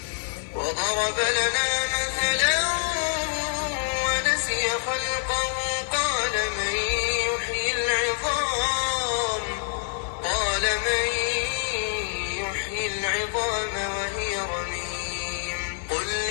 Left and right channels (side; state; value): right; silent; digital silence